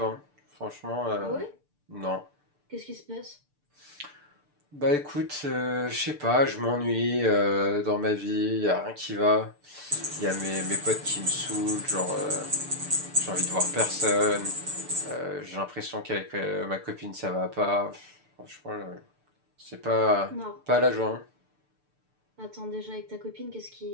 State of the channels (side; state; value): left; late; 6.8 ms